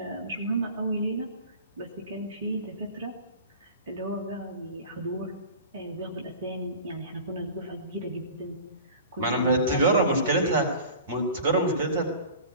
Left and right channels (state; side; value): inverted; both; correlation -0.39